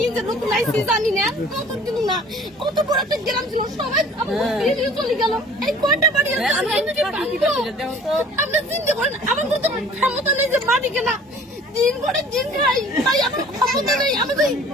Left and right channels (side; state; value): both; normal; correlation 0.50